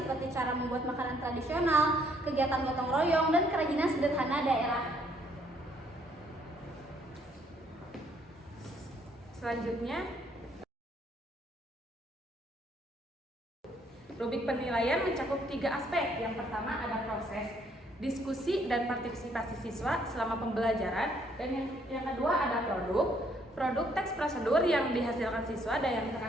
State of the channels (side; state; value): both; normal; correlation 0.67